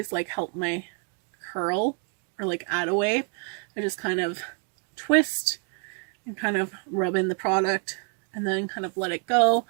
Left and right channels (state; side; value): quieter; left; 37.0 dB